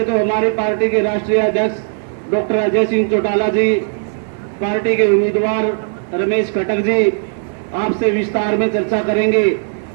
तो हमारी पार्टी के राष्ट्रीय अध्यक्ष डॉक्टर अजय सिंह चौटाला जी, पार्टी के उम्मीदवार रमेश खट्टर जी आपसे विस्तार में चर्चा करेंगे।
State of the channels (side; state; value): left; silent; digital silence